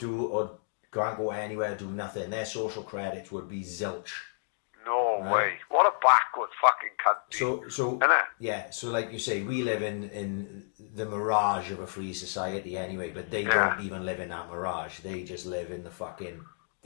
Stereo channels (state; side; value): silent; right; digital silence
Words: or can't go anywhere, do nothing. Their social credits would be zilch. No way. What a backward fucking country. So yeah, so like you say, we live in the mirage of a free society anyway, but they don't even live in that mirage. They just live in